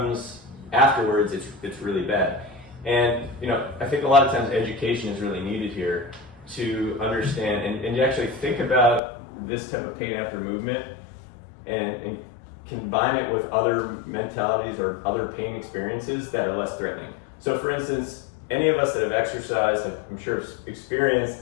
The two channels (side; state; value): right; drops out; at 9.0 s